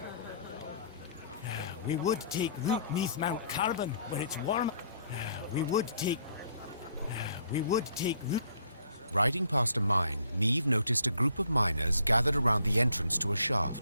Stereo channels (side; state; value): both; inverted; correlation -0.62